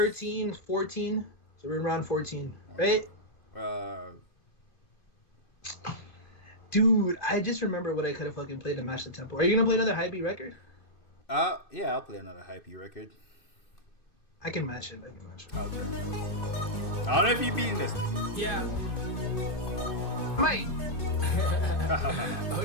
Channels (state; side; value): late; right; 2.6 ms